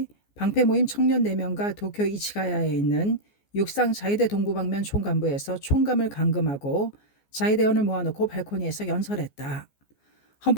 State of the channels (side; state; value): right; late; 14 ms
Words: 방패 모임 청년 4명과 도쿄 이치가야에 있는 육상 자위대 동부방면 총감부에서 총감을 감금하고 자위대원을 모아놓고 발코니에서 연설했다.